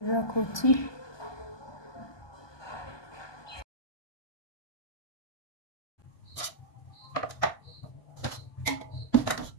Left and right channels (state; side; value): late; right; 1.2 ms